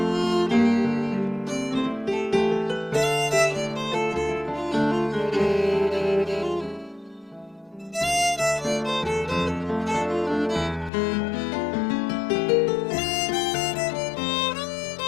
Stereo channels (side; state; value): right; drops out; at 10.9 s